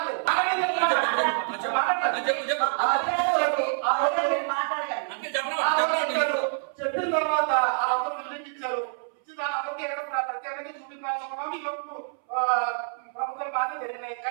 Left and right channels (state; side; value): silent; left; 60 dB below the other